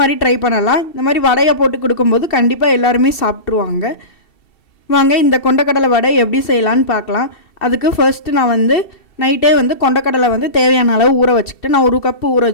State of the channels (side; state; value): right; late; 2.7 ms